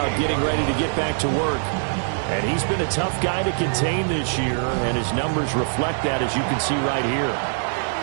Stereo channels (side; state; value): left; silent; 58 dB below the other